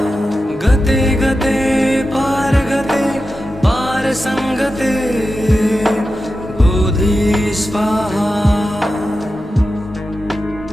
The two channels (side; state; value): both; normal; correlation 0.92